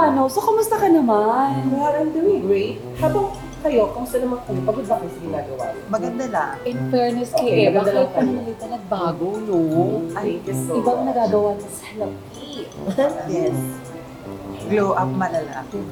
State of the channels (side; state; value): both; identical; correlation 1.00